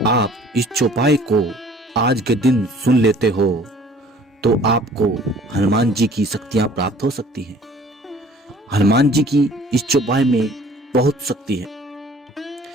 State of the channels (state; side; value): normal; both; correlation 0.52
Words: आप इस चौपाई को आज के दिन सुन लेते हो तो आपको हनुमान जी की शक्तियां प्राप्त हो सकती हैं। हनुमान जी की इस चौपाई में बहुत शक्ति है।